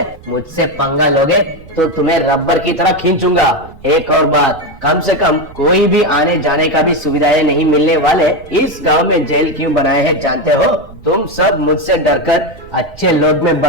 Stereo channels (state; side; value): noise; right; rumble, 21 dB below the sound